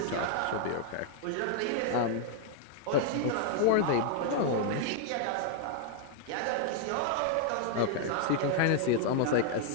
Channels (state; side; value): different; both; correlation 0.00